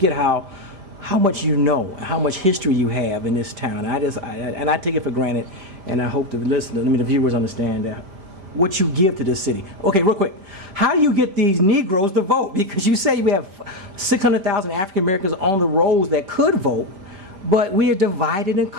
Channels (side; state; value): left; late; 5.0 ms